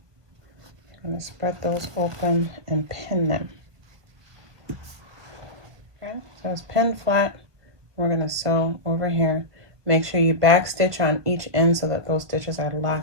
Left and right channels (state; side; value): late; left; 1.2 ms